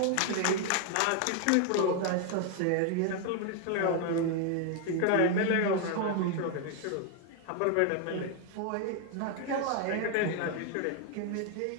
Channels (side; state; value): both; different; correlation 0.01